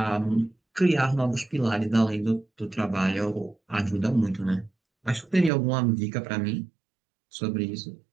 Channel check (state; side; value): drops out; left; at 5.5 s